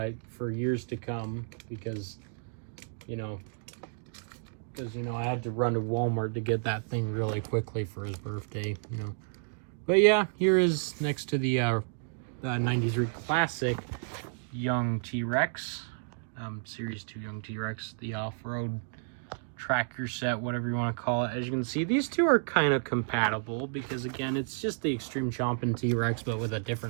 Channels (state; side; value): silent; left; digital silence